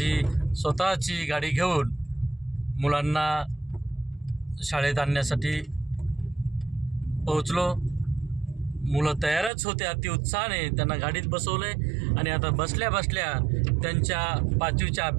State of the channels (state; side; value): drops out; left; at 9.5 s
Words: स्वतःची गाडी घेऊन मुलांना शाळेत आणण्यासाठी पोहोचलो। मुलं तयारच होते अतिउत्साहाने, त्यांना गाडीत बसवले आणि आता बसल्या बसल्या त्यांच्या 5वीच्या